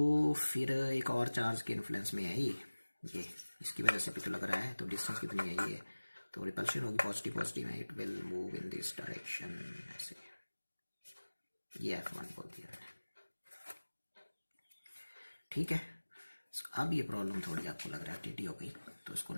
फिर एक और चार्ज के इन्फ्लुएंस में है ये इसकी वजह से भी तो लग रहा है, तो डिस्टेंस कितनी है ये, तो रिपल्शन होगी पॉजिटिव पॉजिटिव में, it will move in this direction, ऐसे, ये F1 बोल दिया मैंने, ठीक है। अब ये प्रॉब्लम थोड़ी आपको लग रहा है टीटी हो गई, तो इसको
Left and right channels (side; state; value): both; inverted; correlation -1.00